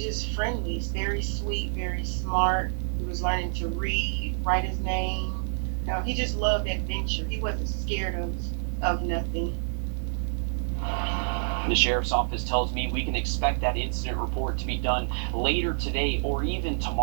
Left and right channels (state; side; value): silent; left; digital silence